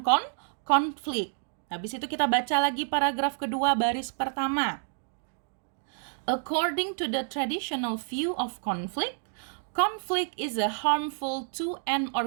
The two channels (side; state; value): left; silent; digital silence